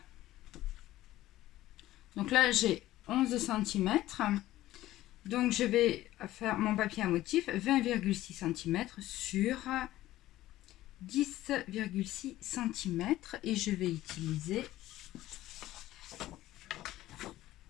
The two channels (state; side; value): quieter; right; 15.3 dB